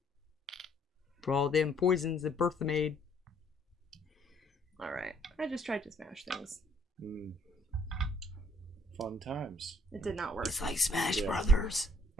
For all them poisons that Bertha made. Alright. I just tried to smash things. Fun times. It did not work. It's like Smash Yeah. Brothers.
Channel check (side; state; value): both; normal; correlation 0.66